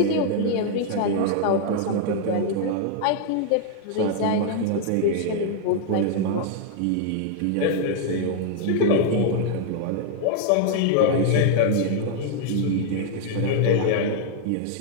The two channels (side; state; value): both; different; correlation 0.00